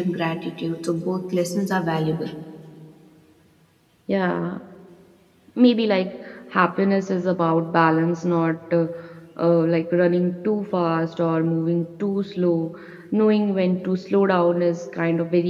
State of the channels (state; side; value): identical; both; correlation 1.00